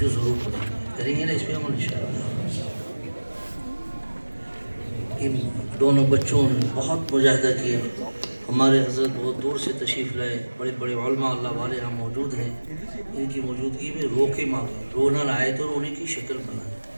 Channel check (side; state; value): both; inverted; correlation -1.00